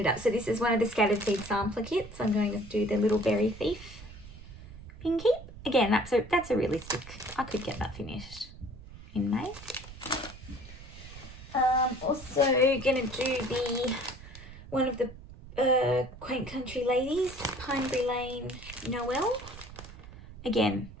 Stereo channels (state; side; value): noise; right; rumble, 15 dB below the sound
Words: up. So this is one of the Scattered Seed sampler kits. I'm going to do the Little Berry Thief pin keep. Again, that's a realistic. I could get that finished in May. Also gonna do one of the Quaint Country Ladies, Pinebury Lane Noel. Again,